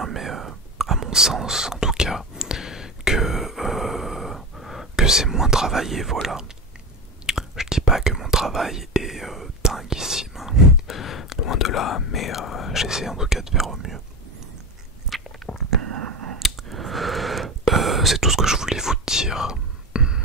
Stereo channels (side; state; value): both; normal; correlation 0.23